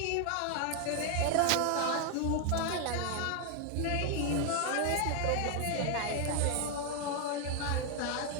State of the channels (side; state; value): both; different; correlation 0.01